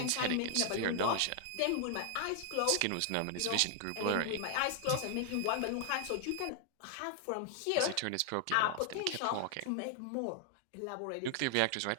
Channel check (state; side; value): different; both; correlation 0.00